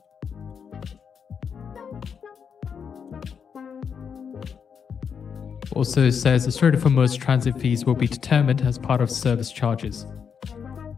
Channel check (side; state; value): right; quieter; 6.8 dB